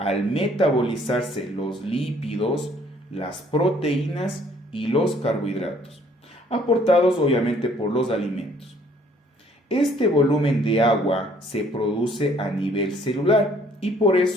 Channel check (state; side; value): normal; both; correlation 0.61